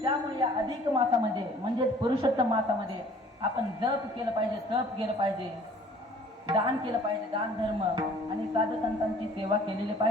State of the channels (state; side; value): normal; both; correlation 0.53